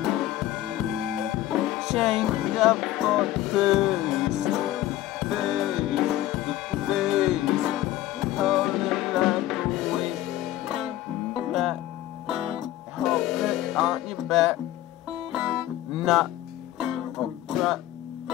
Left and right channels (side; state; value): right; quieter; 14.4 dB